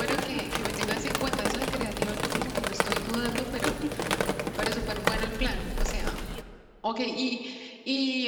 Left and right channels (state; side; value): identical; both; correlation 1.00